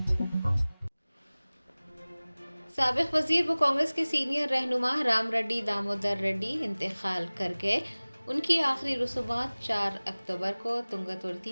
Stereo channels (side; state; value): both; inverted; correlation -1.00